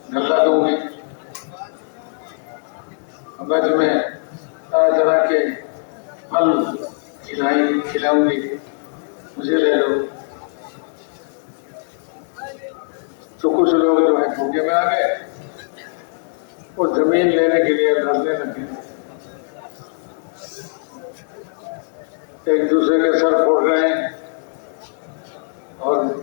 गल्ला दूंगी, मैं तुम्हें तरह तरह के फल खिलाऊंगी, मुझे ले लो। तो कुछ लोग जो है धोखे में आ गए, वो जमीन लेने के लिए लड़ने लगे, एक दूसरे के सर फोड़ रहे हैं और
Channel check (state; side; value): silent; right; 65 dB below the other